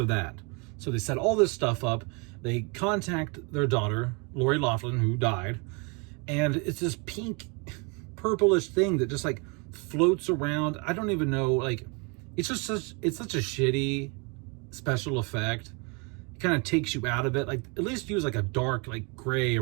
that. So they set all this stuff up. They contact their daughter, Lori Loughlin, who died, and it's this pink, purplish thing that just like floats around. I don't even know, like, it's such a shitty special effect. It kind of takes you out of it. Like, at least use like a dark, like gray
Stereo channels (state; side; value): quieter; left; 32.2 dB